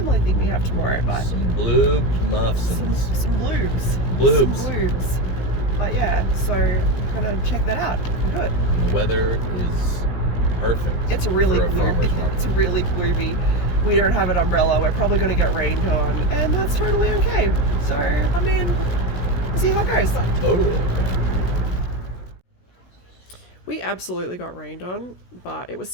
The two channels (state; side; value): late; right; 16 ms